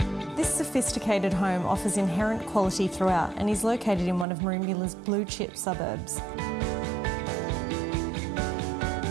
This sophisticated home offers inherent quality throughout and is located in one of Merimbula's blue chip suburbs.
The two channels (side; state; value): left; drops out; at 4.2 s